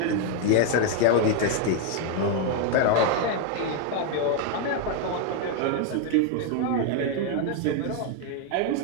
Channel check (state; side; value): different; both; correlation 0.01